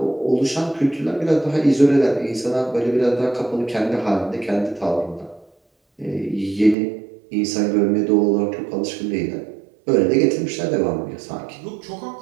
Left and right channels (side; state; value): left; drops out; at 6.8 s